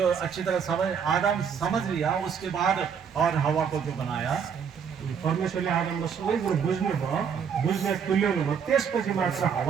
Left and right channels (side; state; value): left; quieter; 7.0 dB